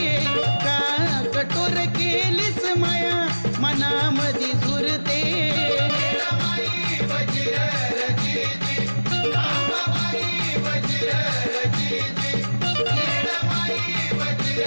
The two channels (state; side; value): inverted; both; correlation -1.00